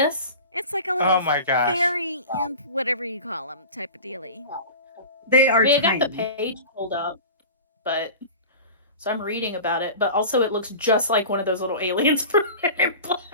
It's like a little Oh my gosh! fairy imp, whatever you call them, type of dealie. They I are mean, I tiny. got the page pulled up, but so I'm reading about it. But also, it looks just like one of those little aliens from Men in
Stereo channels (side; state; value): both; inverted; correlation -0.36